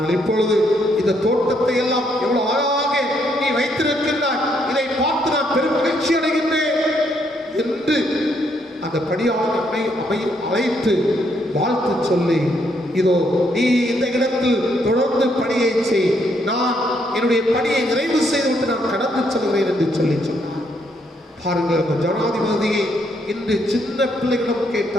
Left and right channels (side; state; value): both; normal; correlation 0.73